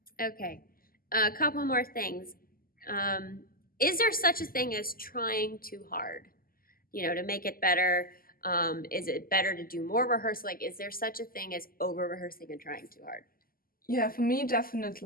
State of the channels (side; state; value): right; late; 0.42 ms